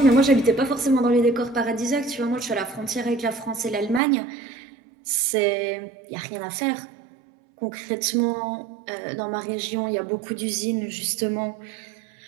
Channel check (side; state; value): left; drops out; at 4.0 s